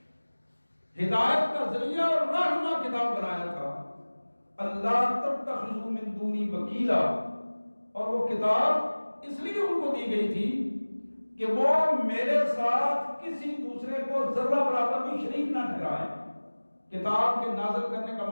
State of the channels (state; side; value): inverted; both; correlation -1.00